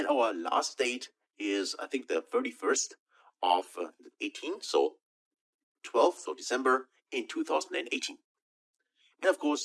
our last date is, I think, the 31st of 18. So 12th of December in 2018. And of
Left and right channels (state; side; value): identical; both; correlation 1.00